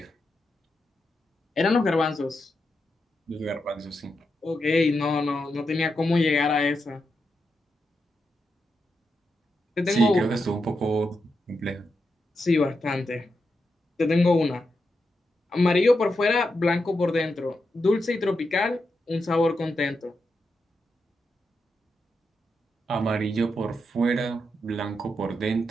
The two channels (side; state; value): both; normal; correlation 0.86